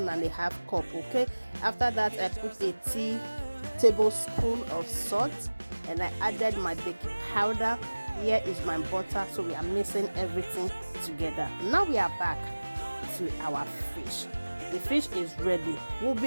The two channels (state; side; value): inverted; both; correlation -1.00